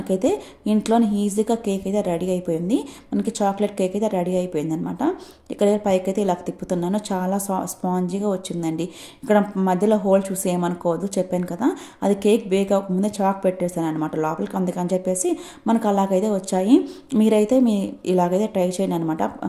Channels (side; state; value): both; identical; correlation 1.00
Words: ఇంట్లోనే ఈజీగా కేక్ అయితే రెడీ అయిపోయింది. మనకి చాక్లెట్ కేక్ అయితే రెడీ అయిపోయింది అనమాట. ఇక్కడ పైకి అయితే ఇలా తిప్పుతున్నాను, చాలా స్పాంజీగా వచ్చిందండి. ఇక్కడ మధ్యలో హోల్ చూసి ఏమనుకోవద్దు, చెప్పాను కదా అది కేక్ బేక్ అవ్వకముందే చాక్ పెట్టేసాను అనమాట లోపలికి, అందుకని చెప్పేసి మనకు అలాగైతే వచ్చాయి. మీరైతే ఇలాగైతే ట్రై చేయండి అనమాట.